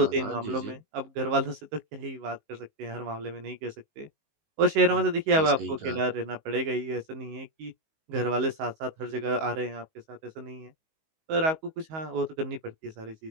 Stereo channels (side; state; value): left; late; 19 ms